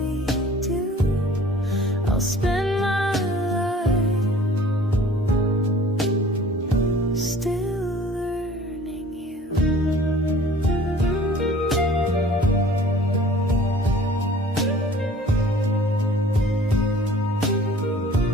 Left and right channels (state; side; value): normal; both; correlation 0.49